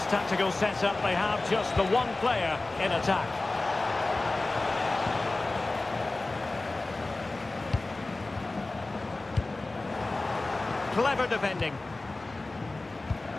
tactical setup, they have just the one player in attack. Clever defending.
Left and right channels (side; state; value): right; quieter; 3.1 dB